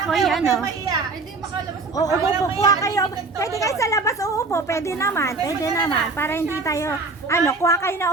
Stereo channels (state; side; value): quieter; left; 3.8 dB